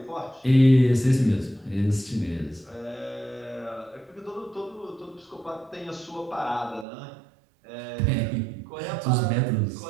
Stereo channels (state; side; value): drops out; left; at 6.9 s